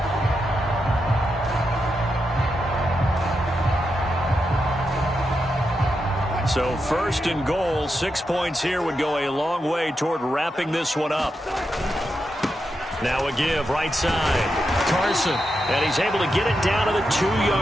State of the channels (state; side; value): normal; both; correlation 0.86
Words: So first and goal, 6 points here would go a long way toward wrapping this one up. Now a give, right side. Carson, and he's able to get it down to the